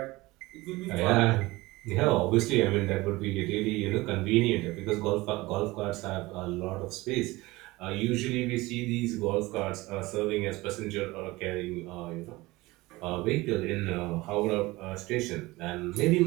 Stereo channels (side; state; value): left; quieter; 20.6 dB